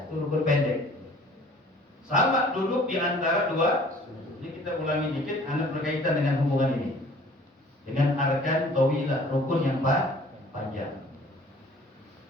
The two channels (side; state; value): both; normal; correlation 0.51